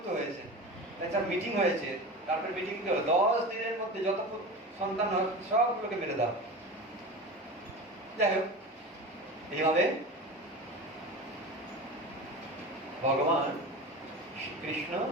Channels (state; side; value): normal; both; correlation 0.30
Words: হয়েছে। একটা মিটিং হয়েছে, তারপর মিটিং হলো 10 দিনের মধ্যে যত সন্তান হয় সবগুলোকে মেরে দাও। যাই হোক, এইভাবে ভগবান শ্রীকৃষ্ণ